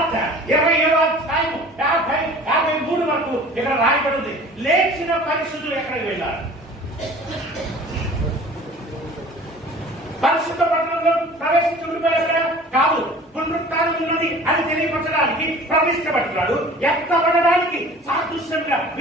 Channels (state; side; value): normal; both; correlation 0.45